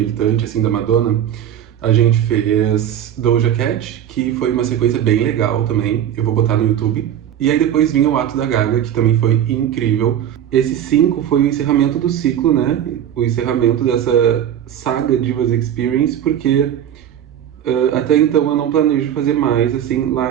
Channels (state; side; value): quieter; left; 10.2 dB